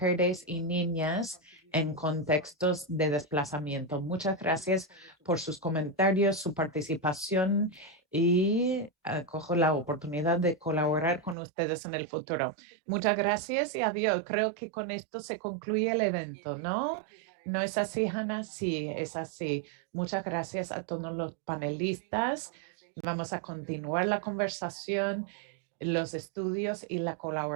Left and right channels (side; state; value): left; drops out; at 11.4 s